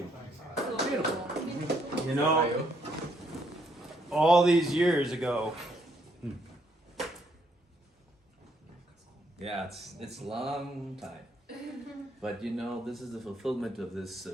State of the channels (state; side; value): normal; both; correlation 0.72